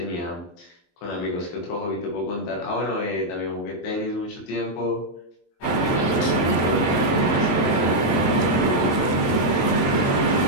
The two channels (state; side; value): late; right; 23 ms